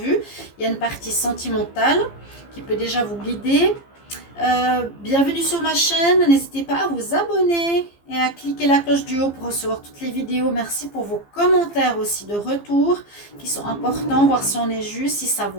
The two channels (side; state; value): right; late; 15 ms